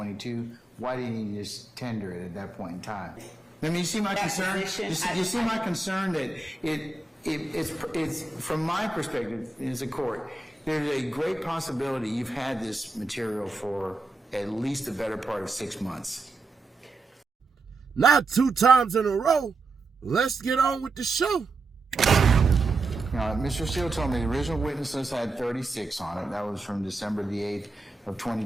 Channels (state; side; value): quieter; left; 3.4 dB